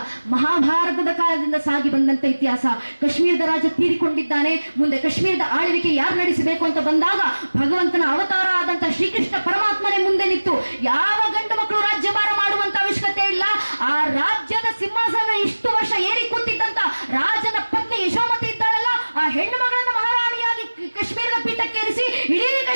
ಮಹಾಭಾರತದ ಕಾಲದಿಂದ ಸಾಗಿ ಬಂದಂತ ಇತಿಹಾಸ. ಕಾಶ್ಮೀರದ ರಾಜ ತೀರಿಕೊಂಡಿದ್ದಾನೆ, ಮುಂದೆ ಕಾಶ್ಮೀರದ ಆಳ್ವಿಕೆ ಯಾರು ನಡೆಸಬೇಕು ಅಂತ ಬಂದಾಗ ಭಗವಂತನ ಅವತಾರ ಆದಂತ ಶ್ರೀಕೃಷ್ಣ ಪರಮಾತ್ಮನೇ ಮುಂದೆ ನಿಂತು ಯಾವ ಗಂಡು ಮಕ್ಕಳು ರಾಜ್ಯಭಾರ ಮಾಡುವಂತ ಅವಶ್ಯಕತೆ ಇಲ್ಲ, ಆ ರಾಜ್ಯದ ಸಿಂಹಾಸನ ಇಷ್ಟು ವರ್ಷ ಏರಿ ಕೂತಿದ್ದಂತ ರಾಜನ ಪತ್ನಿ ಯಶೋಮತಿ ಇದ್ದಾಳಲ್ಲ, ಆ ಹೆಣ್ಣು ಮಗಳನ್ನ ಮಹಾರಾಣಿಯಾಗಿ ಕಾಶ್ಮೀರದ ಪೀಠಕ್ಕೇರಿಸಿ ಇಡೀ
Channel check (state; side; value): inverted; both; correlation -1.00